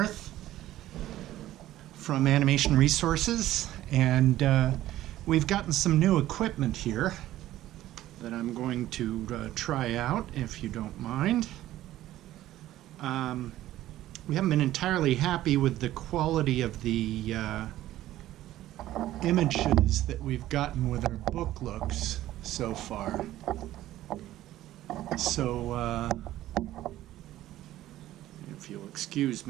from Animation Resources, and we've gotten some new equipment here that I'm going to try out, if you don't mind. We haven't been entirely happy with the quality of the images that we've gotten with our book looks so far. So, if you'll excuse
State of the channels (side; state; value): left; quieter; 14.3 dB